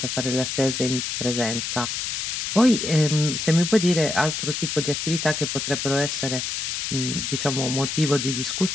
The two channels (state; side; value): noise; left; hiss, 3 dB below the sound